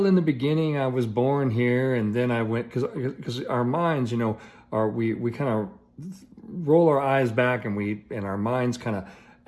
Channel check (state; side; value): identical; both; correlation 1.00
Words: in the beginning, I was born here, and then I went because our minds, are we kind of roll our eyes back, and our minds kind of